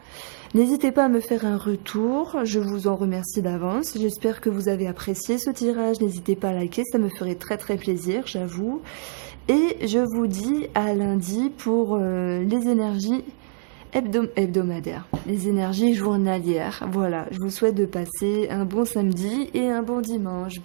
N'hésitez pas à me faire un retour, je vous en remercie d'avance. J'espère que vous avez apprécié ce tirage. N'hésitez pas à liker, ça me ferait très très plaisir, j'avoue. Et je vous dis à lundi pour les énergies hebdomadaires, les énergies journalières. Voilà, je vous souhaite de passer un bon samedi et un bon dimanche.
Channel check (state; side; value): silent; left; digital silence